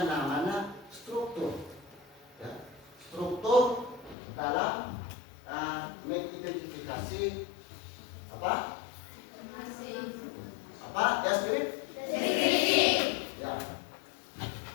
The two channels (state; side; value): drops out; right; at 4.2 s